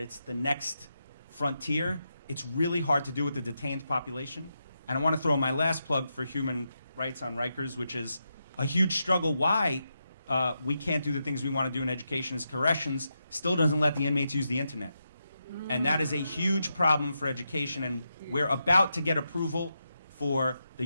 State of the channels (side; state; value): both; inverted; correlation -0.85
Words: the next frontier. It's really hard to do with the detained population. And I want to throw my last plug for human rights on Rikers, which is a huge struggle. Why we can't do the things we want to do in education is corrections still doesn't let the inmates use the internet. And that is a huge problem for education, and we're about to get approval for the